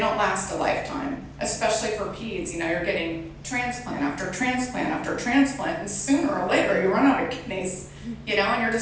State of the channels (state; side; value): identical; both; correlation 1.00